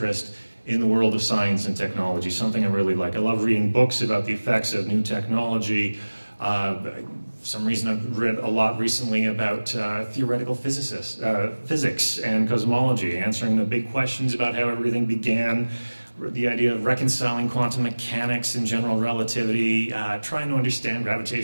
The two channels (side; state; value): both; inverted; correlation -1.00